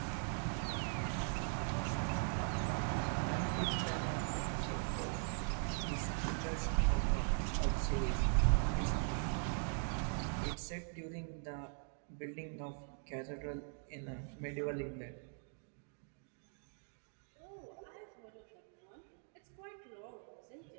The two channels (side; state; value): left; silent; 51 dB below the other